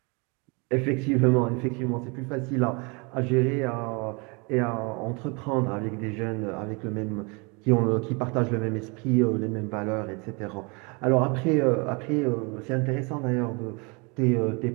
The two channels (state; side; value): quieter; left; 30.4 dB